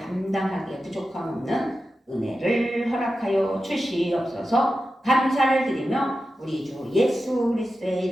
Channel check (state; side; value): normal; both; correlation 0.92